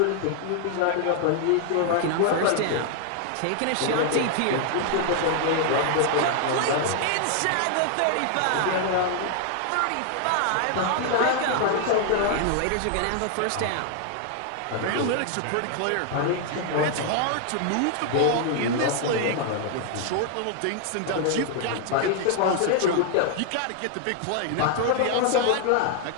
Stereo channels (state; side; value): different; both; correlation 0.00